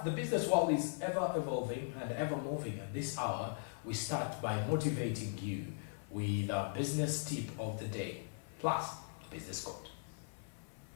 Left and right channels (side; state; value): right; silent; 52 dB below the other